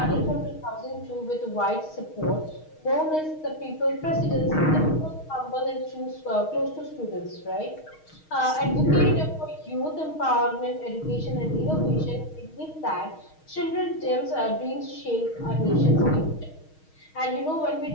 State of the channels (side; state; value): right; late; 6.4 ms